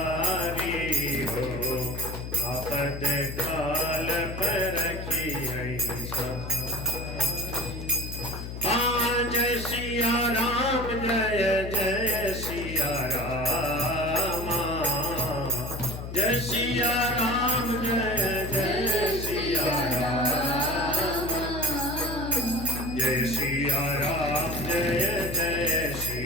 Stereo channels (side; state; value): left; noise; hum, 8 dB below the sound